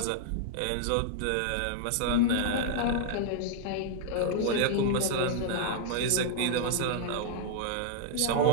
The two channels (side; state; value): both; different; correlation -0.01